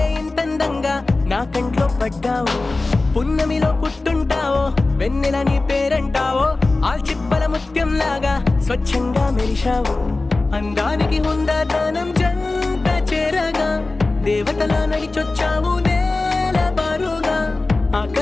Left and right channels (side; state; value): right; quieter; 3.3 dB